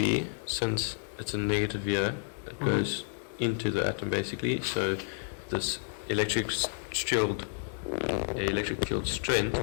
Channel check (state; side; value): silent; right; digital silence